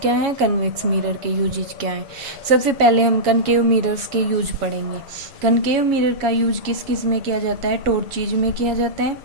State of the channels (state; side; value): late; left; 7.2 ms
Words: क्या हैं, कन्वेक्स मिरर के यूजेज क्या हैं। सबसे पहले हम कनकेव मिरर्स के यूज पढ़ेंगे। कनकेव मिरर का यूज किस किस में किया जाता है, टॉर्चेज में किया जाता है,